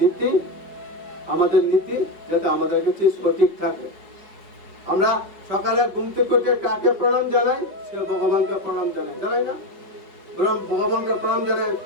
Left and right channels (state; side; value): late; left; 5.3 ms